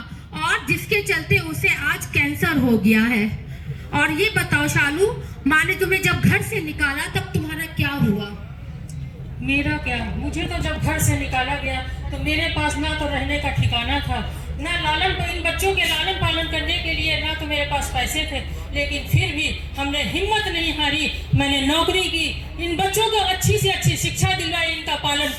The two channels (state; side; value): identical; both; correlation 1.00